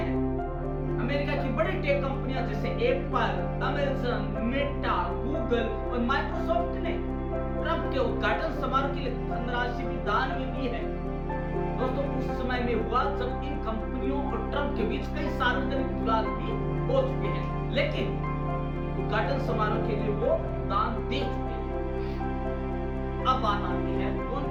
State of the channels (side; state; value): both; identical; correlation 1.00